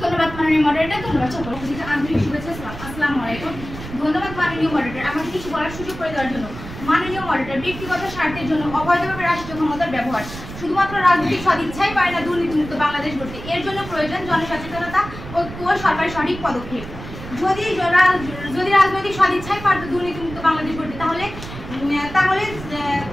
ধন্যবাদ মাননীয় মডারেটর, ধন্যবাদ সকলকে। আন্তরিক শুভেচ্ছা, আসসালামু আলাইকুম। ধন্যবাদ মাননীয় মডারেটর আমাকে কিছু বলার সুযোগ করে দেওয়ার জন্য। মাননীয় মডারেটর, ব্যক্তিগত স্বার্থের জন্য অবৈধভাবে রাষ্ট্রীয় ক্ষমতার ব্যবহার শুধুমাত্র রাজনৈতিক সদিচ্ছাই পারে না দুর্নীতিমুক্ত বাংলাদেশ গড়তে। এর জন্য প্রয়োজন জনসচেতনতা, ঐক্য ও সরকারের সঠিক পদক্ষেপ। যদি রাজনৈতিক সদিচ্ছাই পারত দুর্নীতিমুক্ত বাংলাদেশ গড়তে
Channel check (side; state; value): right; noise; rumble, 12 dB below the sound